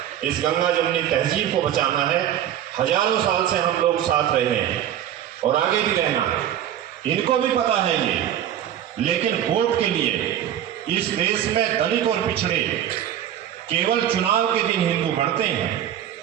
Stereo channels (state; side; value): quieter; left; 10.9 dB